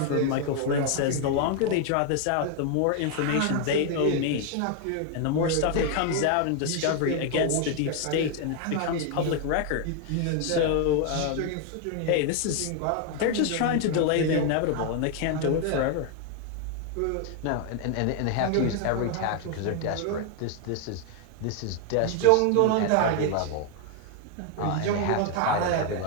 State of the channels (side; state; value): both; different; correlation 0.01